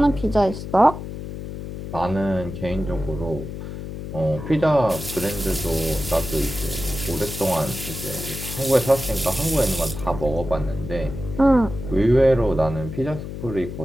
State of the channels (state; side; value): noise; left; hum, 8 dB below the sound